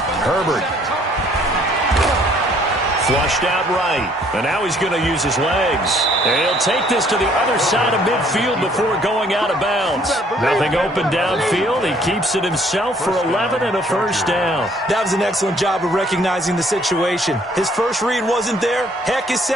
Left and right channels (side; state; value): both; normal; correlation 0.61